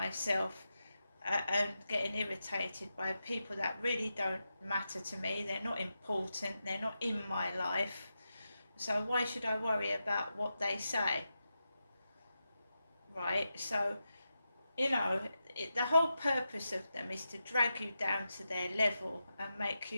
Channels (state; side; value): inverted; both; correlation -0.89